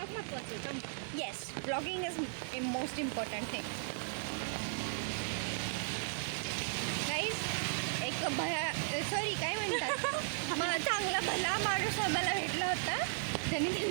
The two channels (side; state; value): left; silent; digital silence